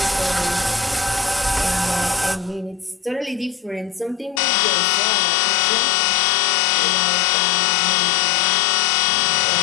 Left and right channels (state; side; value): drops out; right; at 4.4 s